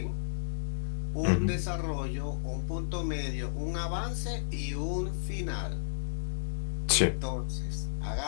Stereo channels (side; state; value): right; silent; digital silence